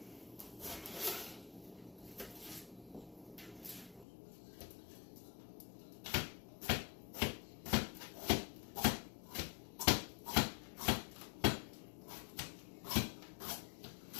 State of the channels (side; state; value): right; drops out; at 4.0 s